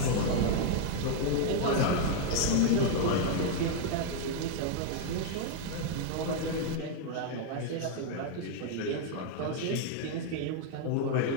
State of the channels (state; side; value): different; both; correlation 0.00